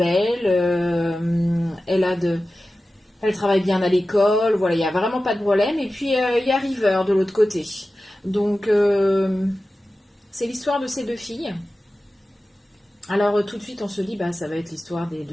elle travaille bien à l'école, voilà, il n'y a vraiment pas de problème. Et puis il y a River de l'autre côté. Donc, c'est l'histoire de ces deux filles. Alors, tout de suite, on se dit, bah, ça va être l'histoire des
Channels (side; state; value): both; normal; correlation 0.95